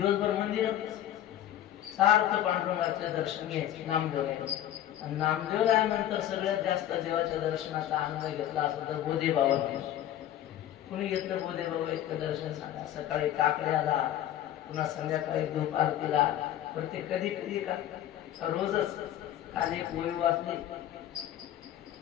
मंदिरात सारखं पांडुरंगाचं दर्शन घ्यायचं. नामदेव आणि नामदेव रायानंतर सगळ्यात जास्त देवाच्या दर्शनाचा आनंद घेतला असं तर बोधे बाबा. कुणी घेतलं बोधे बाबा इतकं दर्शन सांगा. सकाळी काकड्याला, पुन्हा संध्याकाळी धूप आरतीला, प्रत्येक कधी कधी का रोजच. काल एक ओळी वाचली,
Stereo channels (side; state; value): right; quieter; 12.0 dB